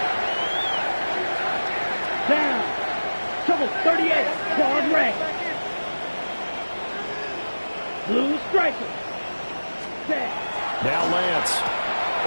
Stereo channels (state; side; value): inverted; both; correlation -1.00